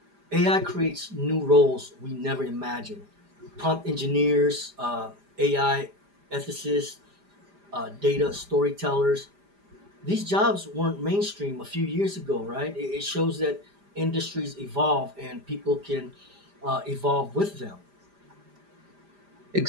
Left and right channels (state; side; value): late; left; 5.0 ms